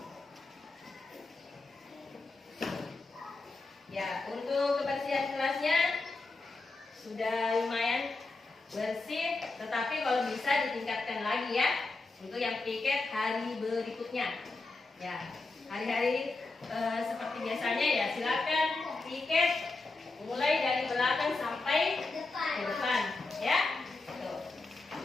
Ya, untuk kebersihan kelasnya sudah lumayan bersih, tetapi kalau bisa ditingkatkan lagi ya untuk yang piket hari berikutnya. Ya, hari-hari seperti biasanya ya silakan piket mulai dari belakang sampai ke depan, ya. Tuh.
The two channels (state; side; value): quieter; right; 3.5 dB